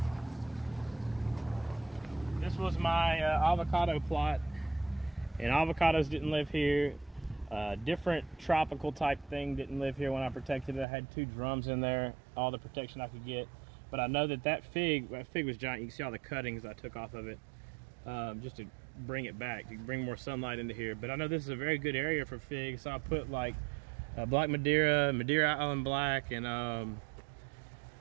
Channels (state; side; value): drops out; left; at 10.9 s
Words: This was my avocado plot, and avocados didn't live here. Different tropical type thing didn't live here when I protected it. I had 2 drums in there, all the protection I could get. But I know that fig was giant. You can see all the cuttings I took off of it. Just to bring it back, to bring more sunlight into here. But I know this is a very good area for figs, so I put like Black Madeira, Madeira Island Black, and